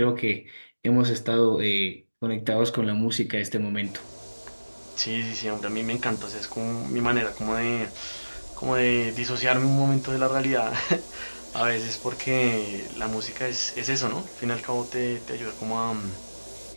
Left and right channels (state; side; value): inverted; both; correlation -1.00